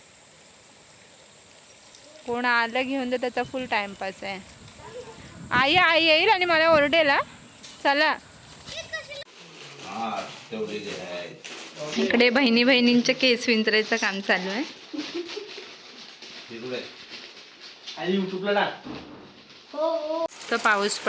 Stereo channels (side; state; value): both; identical; correlation 1.00